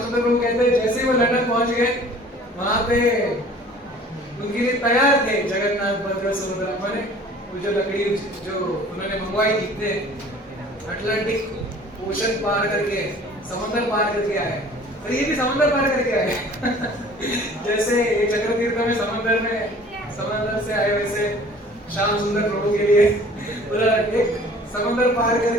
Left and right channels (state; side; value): normal; both; correlation 0.49